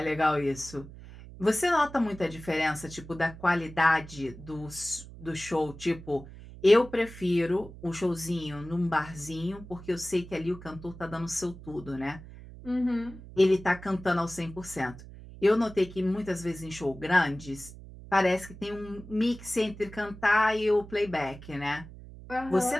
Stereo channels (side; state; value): right; noise; hum, 16 dB below the sound